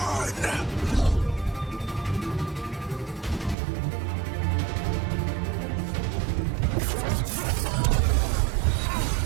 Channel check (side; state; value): left; drops out; at 3.6 s